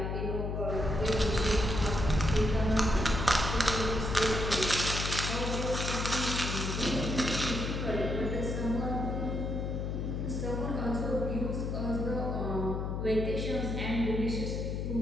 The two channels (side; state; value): left; noise; hum, 2 dB below the sound